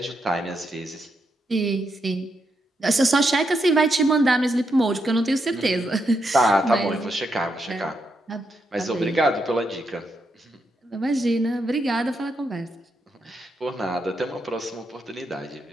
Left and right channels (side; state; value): both; normal; correlation 0.81